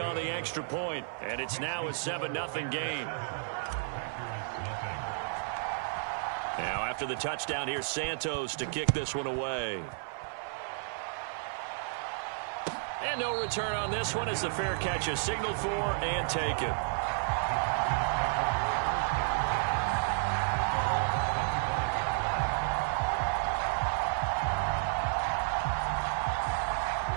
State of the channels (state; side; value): silent; left; 56 dB below the other